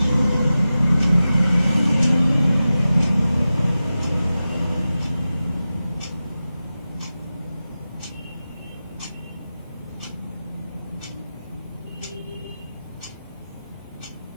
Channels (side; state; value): both; inverted; correlation -0.94